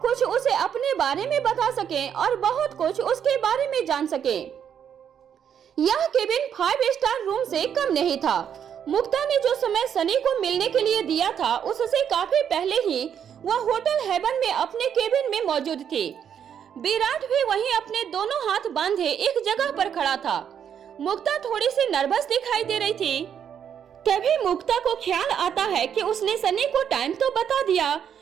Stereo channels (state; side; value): quieter; left; 8.5 dB